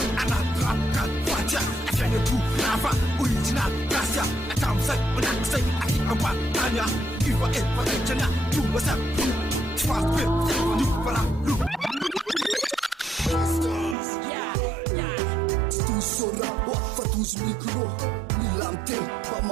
anatrapika fatia aviany apongo lava original gracia atramizay manakizay aty ambatanya iva efaraitsana tonga sapio tsy fasope ny valalo Sora fatouze micro Nilamte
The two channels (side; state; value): left; drops out; at 14.0 s